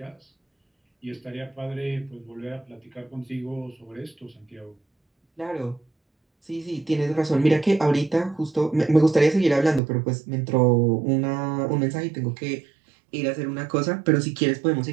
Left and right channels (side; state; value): left; drops out; at 9.8 s